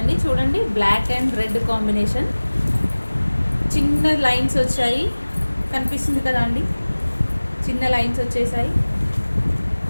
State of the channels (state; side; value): inverted; both; correlation -1.00